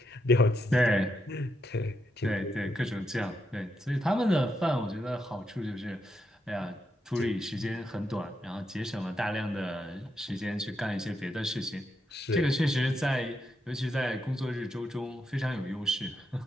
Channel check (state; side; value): normal; both; correlation 0.82